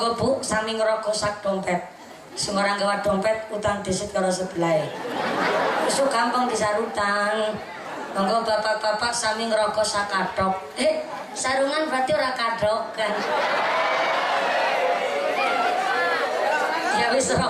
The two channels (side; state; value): both; identical; correlation 1.00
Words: Bu sami ngrokok sak dompet. Sembarang gawa dompet utang disit karo sebelah. Isu gampang disarutan. Monggo bapak-bapak sami ngerokok sak kadok. Sarungan berarti ora kadok kan. Ya wis